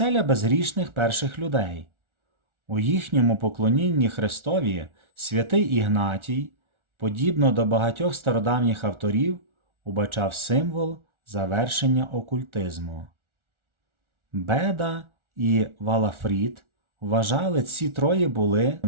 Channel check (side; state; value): left; late; 1.4 ms